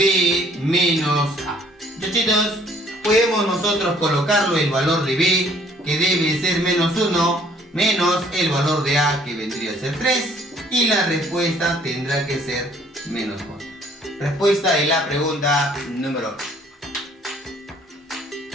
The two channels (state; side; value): normal; both; correlation 0.60